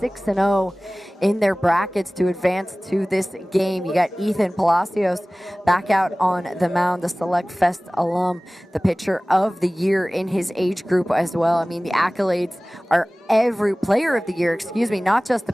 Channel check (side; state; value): both; normal; correlation 0.98